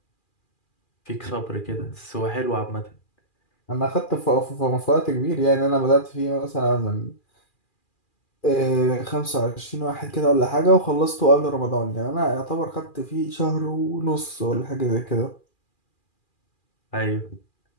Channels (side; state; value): right; late; 2.4 ms